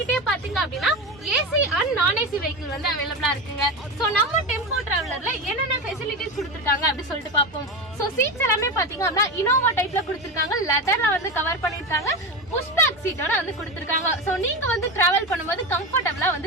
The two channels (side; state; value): both; normal; correlation 0.20